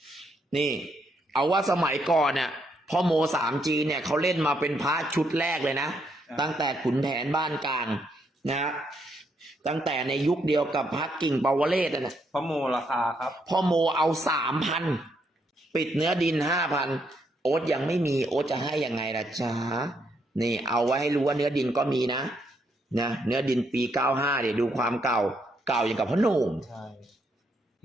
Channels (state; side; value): normal; both; correlation 0.76